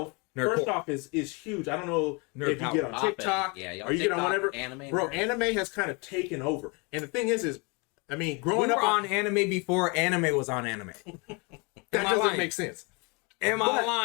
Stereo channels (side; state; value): right; quieter; 30.6 dB